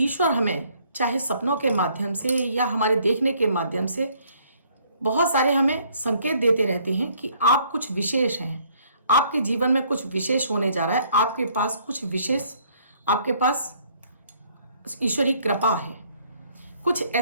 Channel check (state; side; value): inverted; both; correlation -0.64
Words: हमें चाहे सपनों के माध्यम से या हमारे देखने के माध्यम से बहुत सारे हमें संकेत देते रहते हैं कि आप कुछ विशेष हैं। आपके जीवन में कुछ विशेष होने जा रहा है। आपके पास कुछ विशेष, आपके पास ईश्वरी कृपा है। कुछ